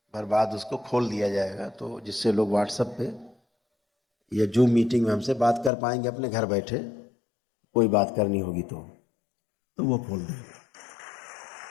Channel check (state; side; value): drops out; right; at 5.7 s